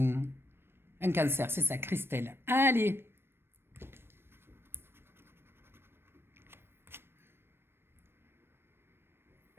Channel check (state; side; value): late; left; 0.11 ms